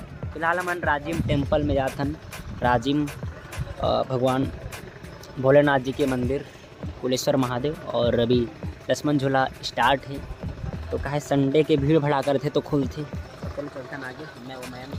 फिलहाल हमन राजिम टेम्पल में जाथन। राजिम भगवान भोलेनाथ जी के मंदिर कुलेश्वर महादेव और अभी लक्ष्मण झूला स्टार्ट है। तो कहे संडे के भीड़ भड़ा कर थे तो खुल थे। चल चलथन आगे मैं वो मयंक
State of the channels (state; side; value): identical; both; correlation 1.00